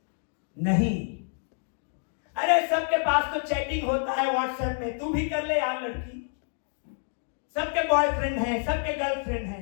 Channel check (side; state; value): right; silent; 59 dB below the other